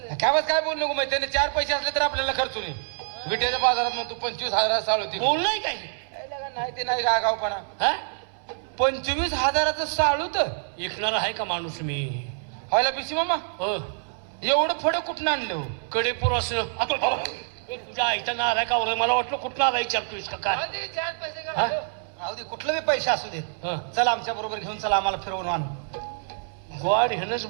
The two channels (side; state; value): left; silent; 61 dB below the other